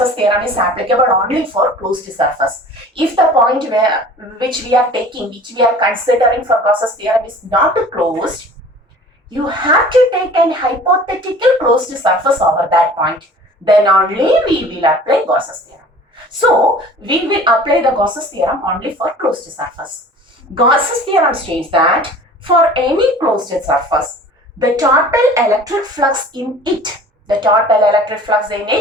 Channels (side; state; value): both; normal; correlation 0.45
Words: theorem is applicable only for closed surface. If the point which we are considering for Gauss's theorem is not closed, you have to take an hypothetical closed surface over that point. Then only we will apply Gauss's theorem. So, we will apply the Gauss's theorem only for closed surface. Gauss's theorem states that for any closed surface, the total electric flux in it